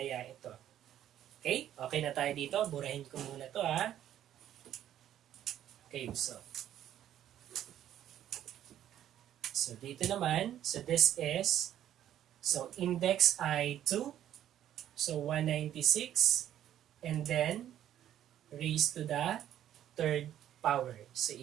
ito? Okay, okay na tayo dito. Burahin ko muna to ha. Okay, so dito naman, so this is, so index ay 2, so 196, and then raised to the third power. So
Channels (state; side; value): quieter; left; 11.3 dB